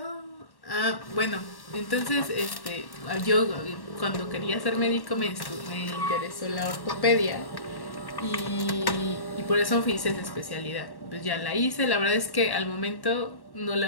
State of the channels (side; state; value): right; late; 1.1 ms